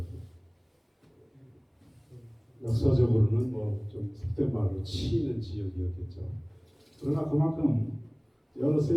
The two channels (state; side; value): identical; both; correlation 1.00